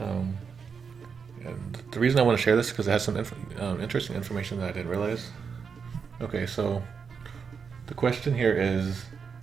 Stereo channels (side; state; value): left; quieter; 6.0 dB